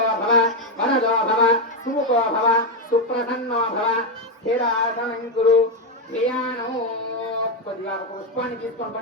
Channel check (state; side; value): normal; both; correlation 0.06